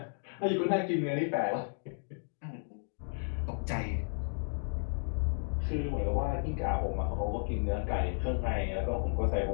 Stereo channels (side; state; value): right; silent; digital silence